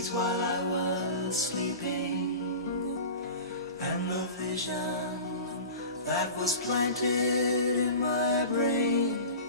while I was sleeping, and And the vision that was planted in my brain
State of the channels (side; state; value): both; inverted; correlation -0.35